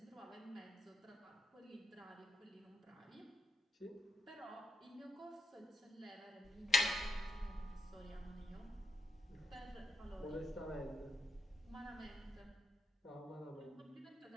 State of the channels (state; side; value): normal; both; correlation 0.82